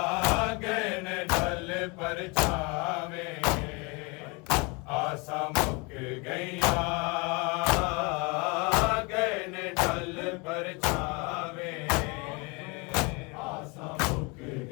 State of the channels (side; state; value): right; quieter; 29.4 dB